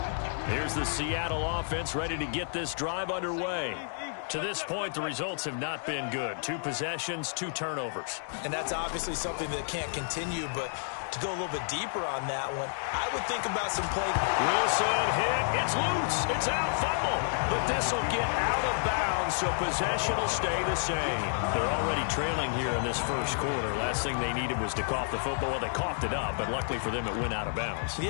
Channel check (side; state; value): right; silent; digital silence